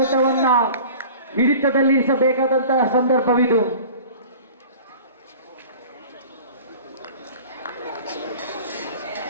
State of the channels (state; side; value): inverted; both; correlation -0.42